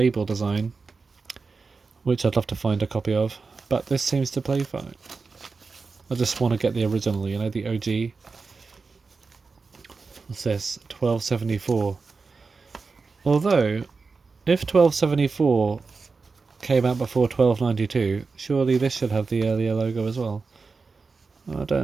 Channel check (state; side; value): quieter; left; 4.5 dB